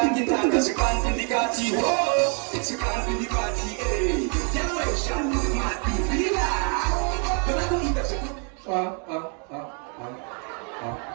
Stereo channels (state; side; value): quieter; left; 38.9 dB